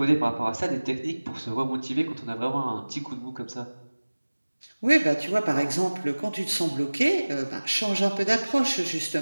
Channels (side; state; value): both; inverted; correlation -1.00